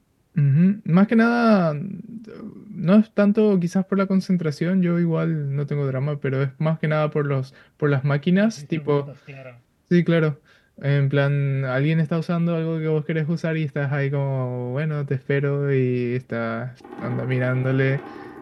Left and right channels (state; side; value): identical; both; correlation 1.00